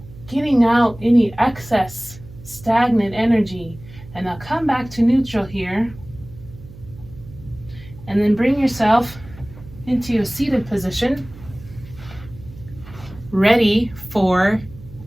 getting out any excess stagnant energy. And now come back to neutral here, and then bring yourself into a seated position, ready for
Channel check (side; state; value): right; noise; hum, 18 dB below the sound